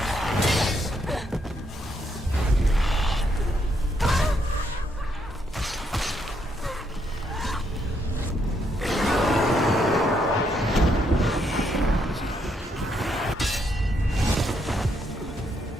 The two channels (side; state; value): both; normal; correlation 0.75